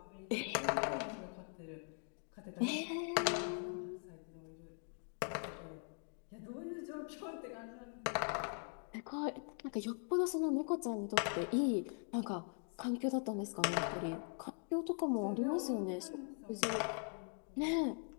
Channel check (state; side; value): silent; right; 50 dB below the other